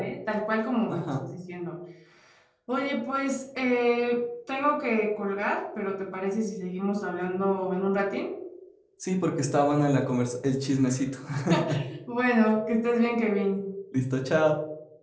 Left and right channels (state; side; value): identical; both; correlation 1.00